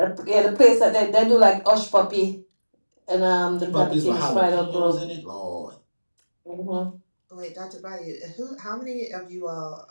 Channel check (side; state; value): both; inverted; correlation -1.00